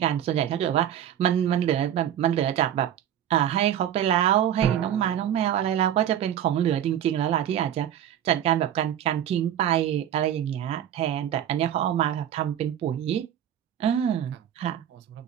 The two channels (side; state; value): left; quieter; 10.5 dB